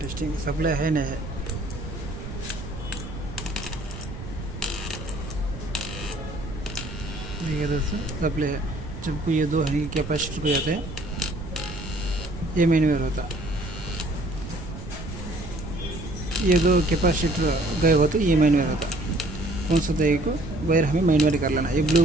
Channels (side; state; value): right; noise; rumble, 10 dB below the sound